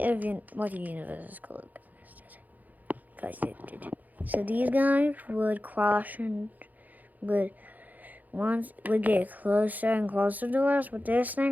what the universe is called. So these guys would cross and would get closer and closer to us, but this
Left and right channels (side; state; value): left; late; 0.081 ms